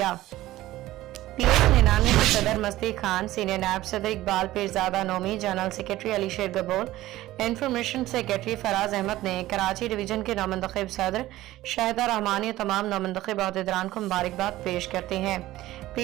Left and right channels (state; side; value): quieter; left; 16.0 dB